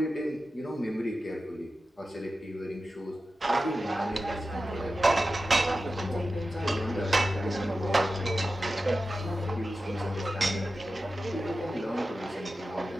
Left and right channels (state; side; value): normal; both; correlation 0.93